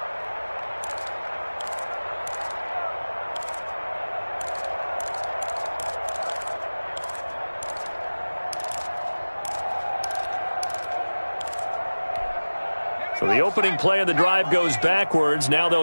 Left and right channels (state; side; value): inverted; both; correlation -1.00